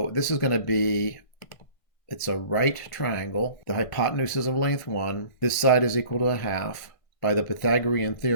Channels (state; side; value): late; right; 1.6 ms